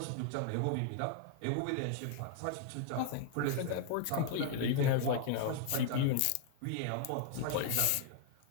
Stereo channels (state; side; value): different; both; correlation 0.00